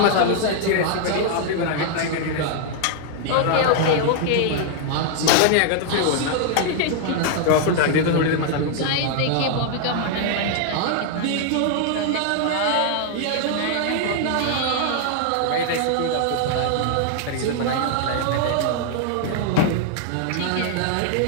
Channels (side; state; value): both; different; correlation 0.00